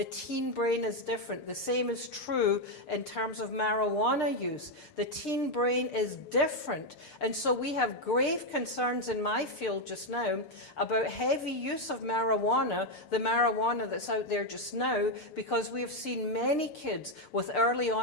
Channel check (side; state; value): right; late; 6.6 ms